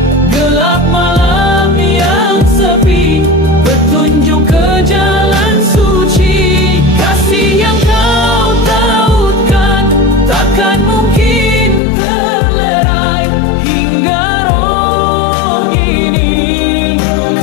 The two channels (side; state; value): right; drops out; at 11.8 s